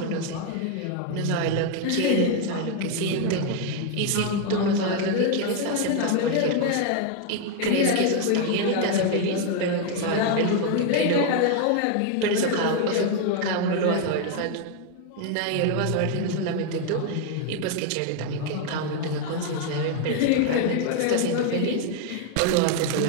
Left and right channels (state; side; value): different; both; correlation 0.01